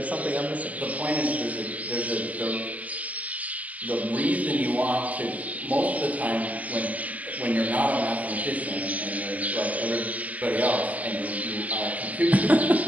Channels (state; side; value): late; left; 0.070 ms